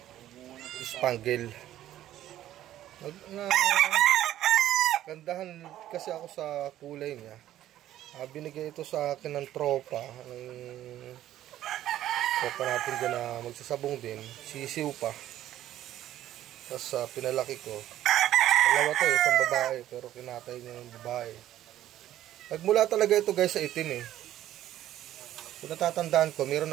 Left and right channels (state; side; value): quieter; left; 12.9 dB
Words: spangle. Gandahan kasi ako sa kulay niya. Binigay ito sa akin ng tropa natin dyan na magsasabong din, sisiw pa. Tapos pinalaki ko. Dalawa to, isang babae, pero kinatay niya yung babae. Nagmula talaga ito guys sa itim eh. Kung natatandaan ko, meron